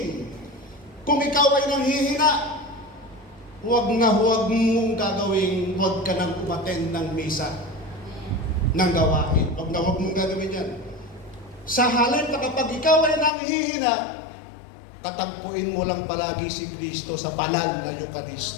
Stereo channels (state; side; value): drops out; right; at 13.3 s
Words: Kung ikaw ay nanghihina, huwag mong gagawin, huwag ka nang umattend ng misa, ng gawain. Huwag mong gagawin yan. Sa halip na kapag ikaw ay nanghihina, tatagpuin mo lang palagi si Kristo sa banal na